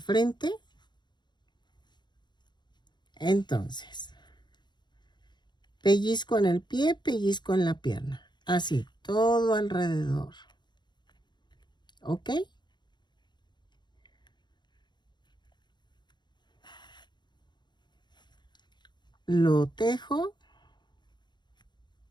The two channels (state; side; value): late; right; 0.21 ms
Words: Entonces, pellizco en el pie, pellizco en la pierna. Así, todo alrededor. ¿Ok? Lo tejo.